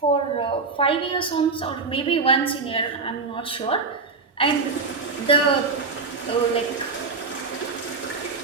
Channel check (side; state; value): left; quieter; 4.3 dB